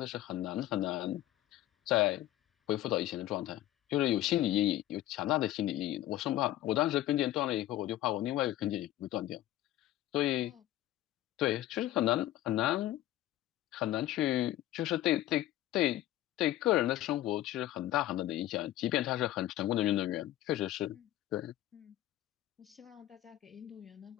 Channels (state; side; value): quieter; right; 14.3 dB